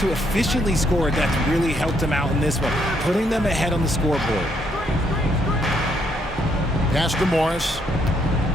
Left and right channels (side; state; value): both; normal; correlation 0.72